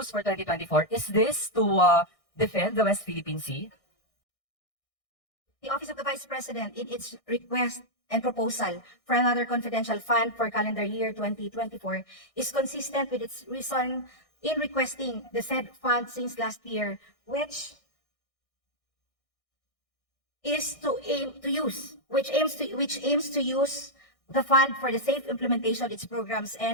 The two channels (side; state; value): right; late; 1.6 ms